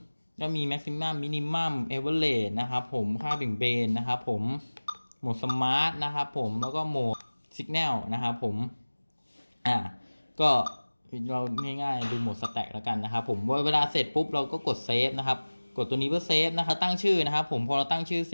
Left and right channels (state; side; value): inverted; both; correlation -1.00